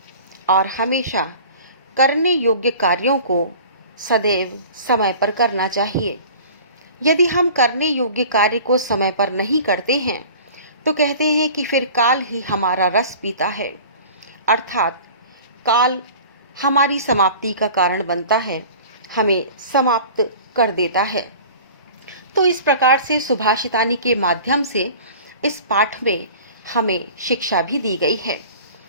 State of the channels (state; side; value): inverted; both; correlation -0.42